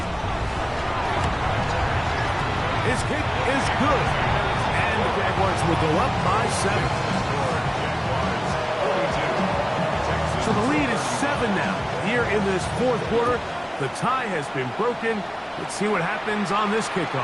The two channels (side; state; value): both; identical; correlation 1.00